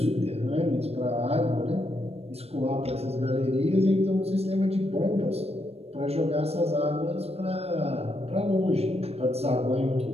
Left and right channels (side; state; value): left; late; 0.29 ms